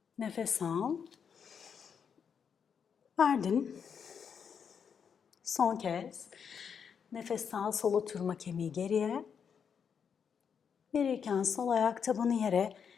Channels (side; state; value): right; quieter; 7.0 dB